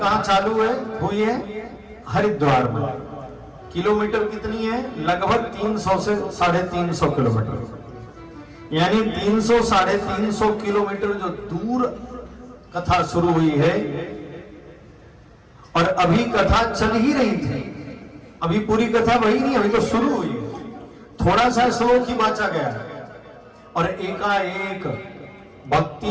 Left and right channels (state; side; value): identical; both; correlation 1.00